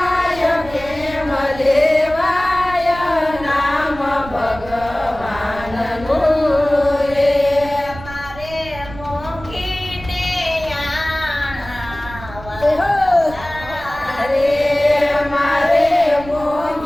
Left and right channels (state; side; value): noise; right; rumble, 15 dB below the sound